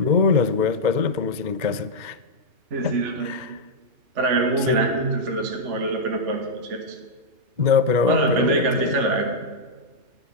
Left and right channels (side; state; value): left; late; 2.1 ms